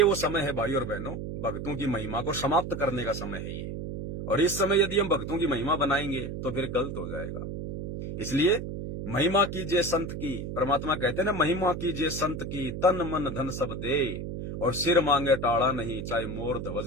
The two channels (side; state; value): right; noise; hum, 6 dB below the sound